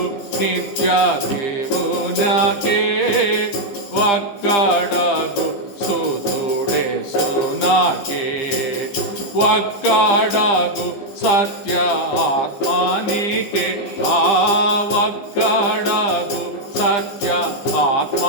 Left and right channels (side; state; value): right; late; 15 ms